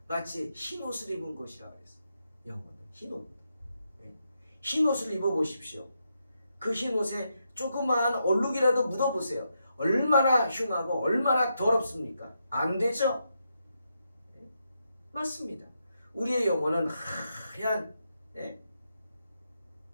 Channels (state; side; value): inverted; both; correlation -0.82